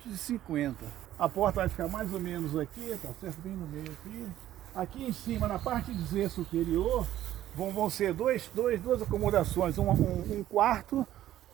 A porta vai ficar mais ou menos aqui, tá certo? Bem no meio aqui. Aqui em cima, na parte de Z superior, vão ser duas acomodações, um quarto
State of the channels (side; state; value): left; quieter; 12.9 dB